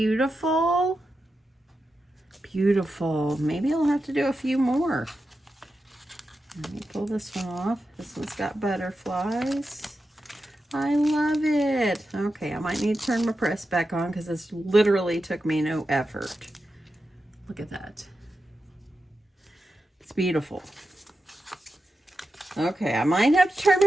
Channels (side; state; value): both; normal; correlation 0.90